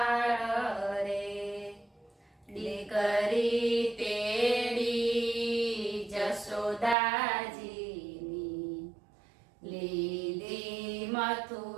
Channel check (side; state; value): left; drops out; at 7.0 s